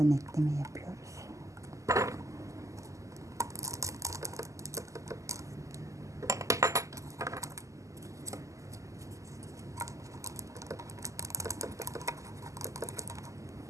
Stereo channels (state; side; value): late; left; 0.16 ms